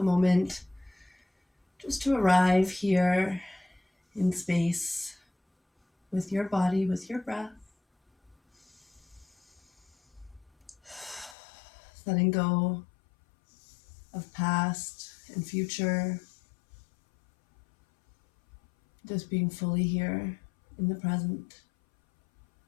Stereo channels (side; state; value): right; drops out; at 11.4 s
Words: moment just to arrive here in space with your body, with your breath. Letting go of past and future. Just being fully here in the present.